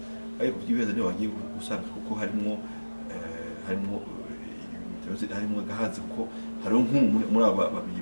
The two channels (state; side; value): inverted; both; correlation -1.00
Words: ariko byibeza niyo bagiye gusanga kuko harimo gahazi kuko hariho muri aba babiri